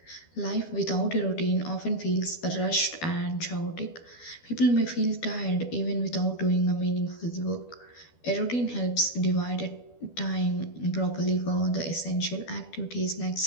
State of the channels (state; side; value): late; right; 12 ms